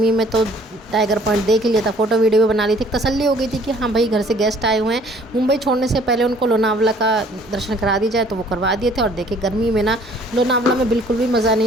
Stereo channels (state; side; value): normal; both; correlation 0.57